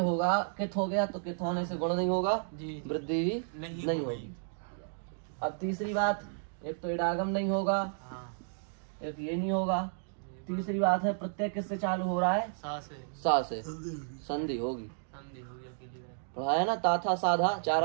कित हो गया, तो कित होने से गुण नहीं होगा, जी। वृद्धि भी नहीं होगी। अब तीसरी बात, एक तो इडागम नहीं होगा, हाँ। एक ये नहीं होगा। तीसरी बात है प्रत्यय किससे चालू हो रहा है? सा से। सा से संधि होगी। संधि हो गया अकेली बार। पढ़ा है ना, ता था साधा, 4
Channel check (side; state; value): left; silent; digital silence